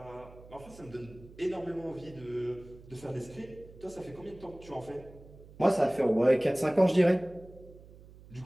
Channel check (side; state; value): right; noise; hum, 20 dB below the sound